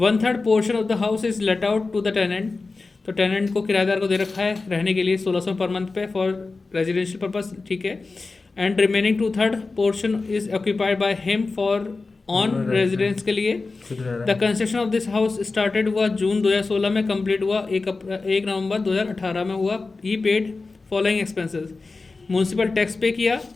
portion of the house is let out to the tenant. तो टेनेंट को किराएदार को दे रखा है रहने के लिए 1600 पर मंथ पे फॉर रेजिडेंशियल पर्पस, ठीक है। And remaining 2/3 portion is occupied by him for on residence के लिए। The construction of this house started हुआ जून 2016 में, कंप्लीट हुआ 1 नवंबर 2018 में हुआ। He paid following expenses. Municipal tax पे किया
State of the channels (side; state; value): right; quieter; 3.8 dB